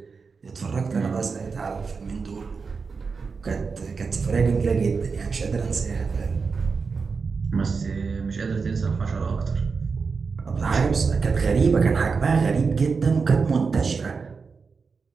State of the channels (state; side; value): quieter; left; 5.0 dB